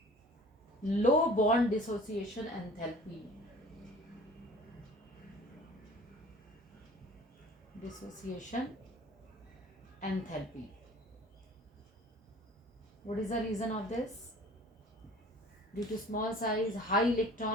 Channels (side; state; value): both; normal; correlation 0.47